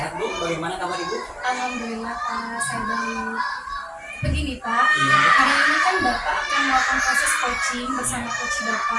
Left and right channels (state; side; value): identical; both; correlation 1.00